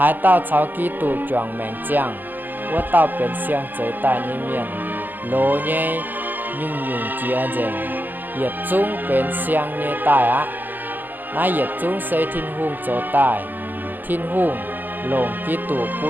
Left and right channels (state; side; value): late; left; 0.089 ms